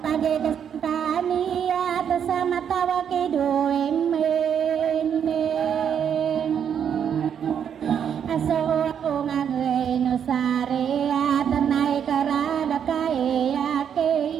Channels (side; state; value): left; quieter; 8.3 dB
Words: pagkakasantani at sa matawa kidoem aso ako nga no sare at nay karada kaya